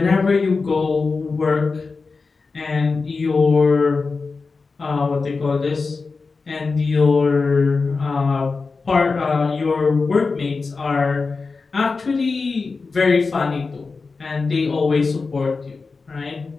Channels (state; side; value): quieter; right; 4.3 dB